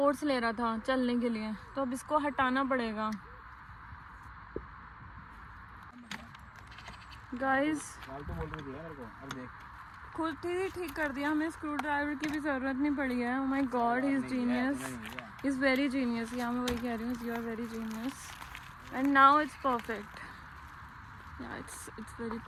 ले रहा था चलने के लिए। तो अब इसको हटाना पड़ेगा गाइस। खुद ही ठीक कर दिया, हमें स्क्रू ड्राइवर की भी ज़रूरत नहीं पड़ी है। Oh my god, he is genius, he is very genius. Yeah मैं वही कह रही हूँ, you are very genius and now it's perfect. Yeah it's very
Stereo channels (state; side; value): identical; both; correlation 1.00